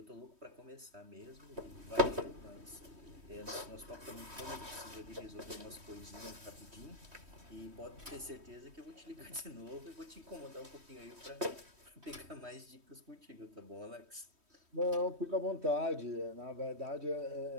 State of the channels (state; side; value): late; left; 3.1 ms